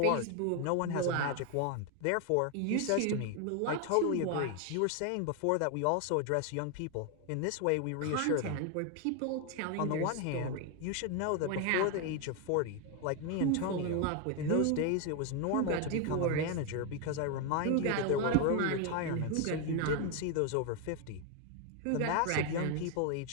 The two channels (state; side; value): different; both; correlation 0.01